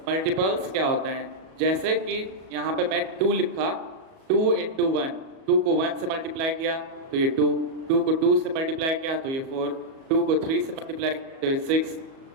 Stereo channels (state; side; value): late; left; 37 ms